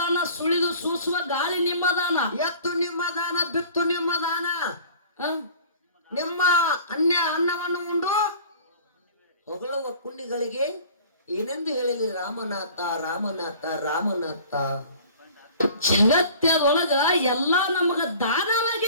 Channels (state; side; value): inverted; both; correlation -0.47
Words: ಸುಳಿದು ಸೂಸುವ ಗಾಳಿ ನಿಮ್ಮ ದಾನ, ಎತ್ತು ನಿಮ್ಮ ದಾನ, ಬಿತ್ತು ನಿಮ್ಮ ದಾನ. ನಿಮ್ಮ ಅನ್ನವನ್ನು ಉಂಡು ಹೊಗಳುವ ಕುಂಡಿಗಳಿಗೆ ಏನೆಂದು ಹೇಳಲಿ ರಾಮನಾಥ ರಾಮನಾಥ ರಾಮನಾಥ. ಜಗತ್ತದೊಳಗ ಎಲ್ಲಾ ನಮಗ